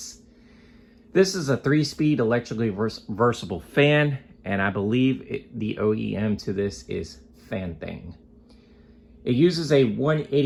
This is a 3-speed electrically versatile fan, and I believe the OEM to this is Fan-Thing. It uses a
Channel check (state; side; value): identical; both; correlation 1.00